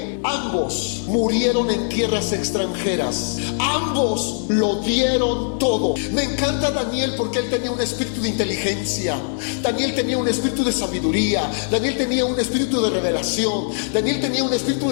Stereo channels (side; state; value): right; silent; digital silence